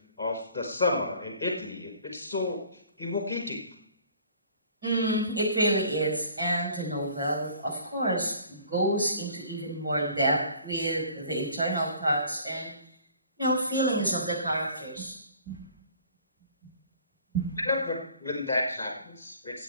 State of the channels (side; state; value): both; inverted; correlation -0.52